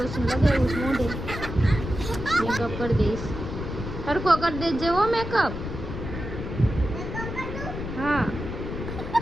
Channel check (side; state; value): left; noise; rumble, 6 dB below the sound